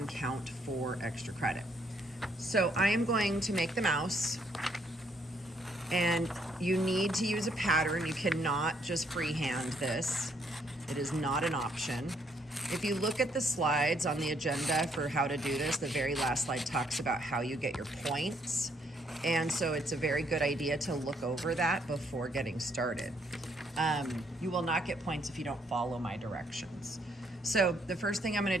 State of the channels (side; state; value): both; normal; correlation 0.70